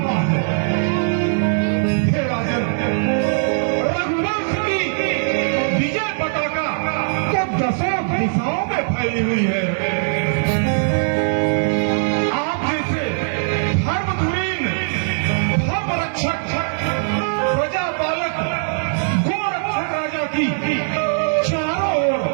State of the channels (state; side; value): silent; left; 66 dB below the other